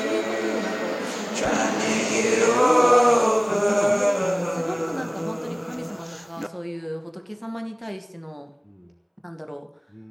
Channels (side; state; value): both; identical; correlation 1.00